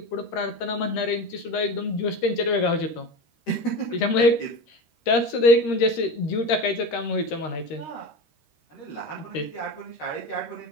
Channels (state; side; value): late; right; 13 ms